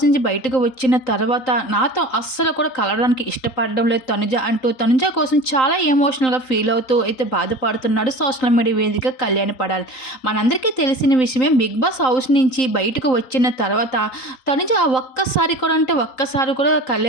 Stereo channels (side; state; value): right; late; 3.8 ms